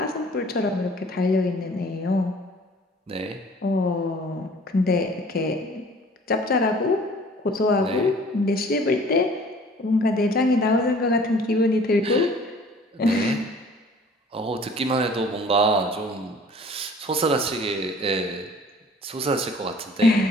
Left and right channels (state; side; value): normal; both; correlation 0.51